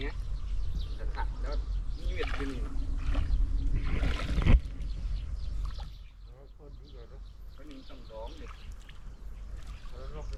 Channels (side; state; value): both; identical; correlation 1.00